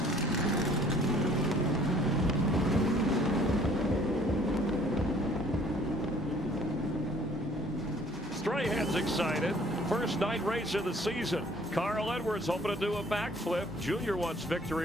Strahan's excited. First night race of the season. Carl Edwards hoping to do a backflip. Junior wants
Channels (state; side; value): normal; both; correlation 0.57